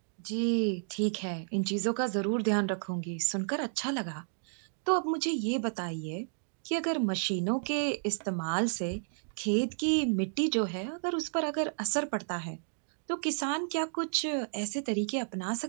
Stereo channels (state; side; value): silent; left; digital silence